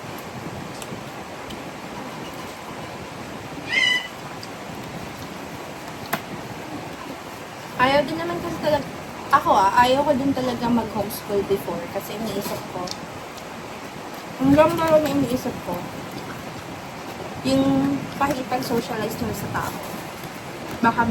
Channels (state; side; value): identical; both; correlation 1.00